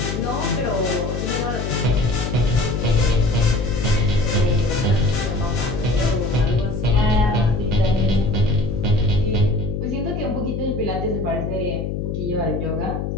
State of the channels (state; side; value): noise; left; hum, 3 dB below the sound